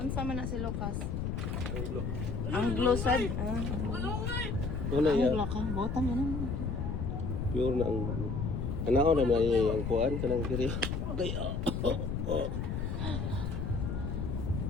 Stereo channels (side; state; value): left; noise; rumble, 2 dB below the sound